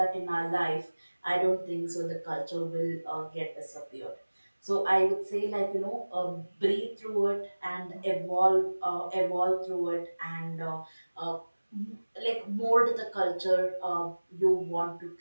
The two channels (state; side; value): inverted; both; correlation -1.00